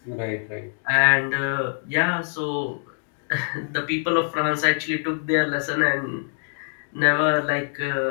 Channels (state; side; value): silent; right; 62 dB below the other